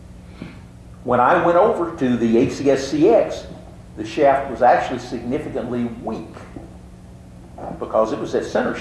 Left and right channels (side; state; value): both; identical; correlation 1.00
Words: When I went over to the ACSCX, the shaft was actually significantly weak because it was at center